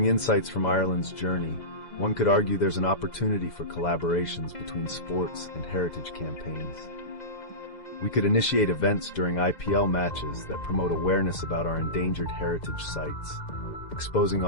insights from Ireland's journey, one could argue there's an opportunity for collaborations between sports and heritage campaigns. We could initiate events during IPL matches that promote awareness about our endangered heritage sites, exposing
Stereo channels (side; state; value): right; late; 2.0 ms